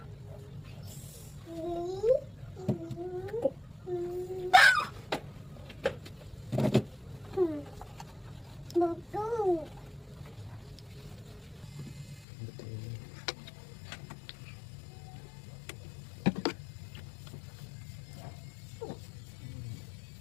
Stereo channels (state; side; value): drops out; right; at 12.2 s